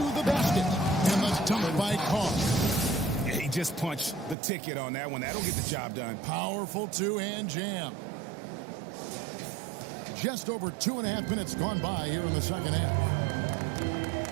the basket. And the dunk by Carr. He just punched the ticket on that one. That'll get the job done. Powerful two-hand jam. Just over 2.5 minutes gone by here in the second half.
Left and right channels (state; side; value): drops out; left; at 4.4 s